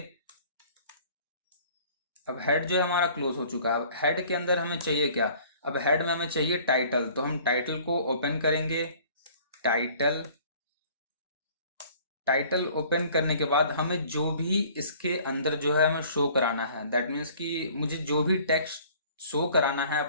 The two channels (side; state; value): both; inverted; correlation -0.52